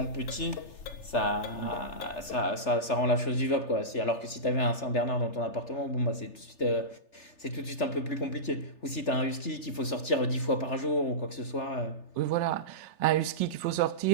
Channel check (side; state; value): right; late; 3.4 ms